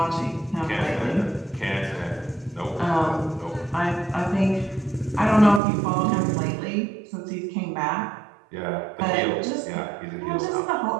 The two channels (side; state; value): left; drops out; at 5.6 s